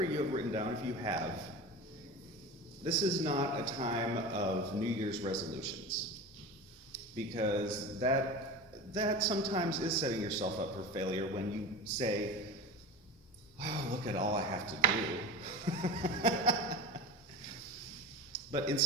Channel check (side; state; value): both; normal; correlation 0.29